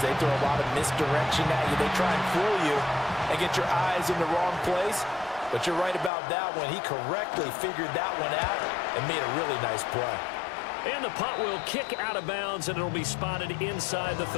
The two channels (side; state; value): right; drops out; at 6.1 s